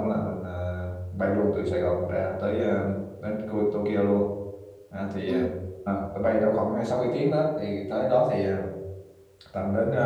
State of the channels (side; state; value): both; identical; correlation 1.00